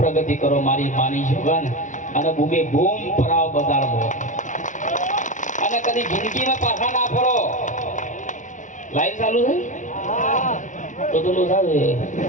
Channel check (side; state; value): right; late; 0.37 ms